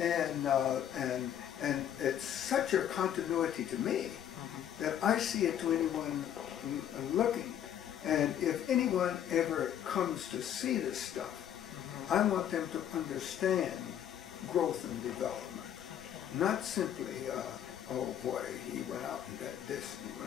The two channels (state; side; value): quieter; right; 10.1 dB